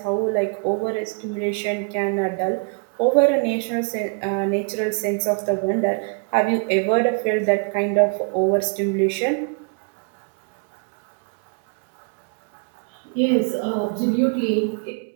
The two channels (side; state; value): left; quieter; 36.6 dB